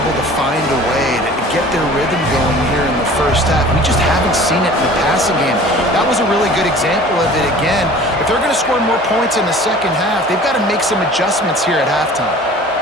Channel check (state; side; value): normal; both; correlation 0.45